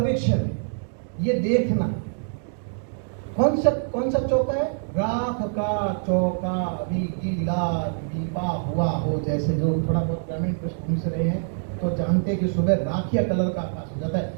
है, ये देखना। कौन सा चौका है? राख का चौका अभी गीला लीपा हुआ हो जैसे। जो थोड़ा बहुत ग्रामीण पृष्ठभूमि से रहे हैं तो जानते हैं कि सुबह राखिया कलर का आकाश हो जाता है।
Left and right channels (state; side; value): silent; left; digital silence